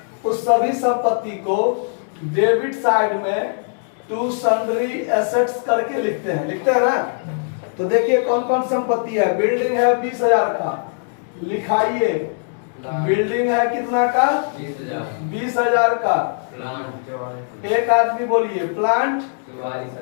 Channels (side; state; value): right; silent; digital silence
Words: उस सभी संपत्ति को डेबिट साइड में टू सन्ड्री एसेट्स करके लिखते हैं ना। तो देखिए कौन कौन संपत्ति है। बिल्डिंग है 20,000 का, लिखाइए। बिल्डिंग है कितना का? 20,000 का। एक आदमी बोलिए। Plant